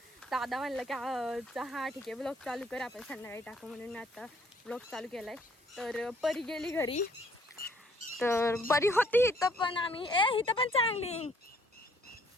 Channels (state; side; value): normal; both; correlation 0.63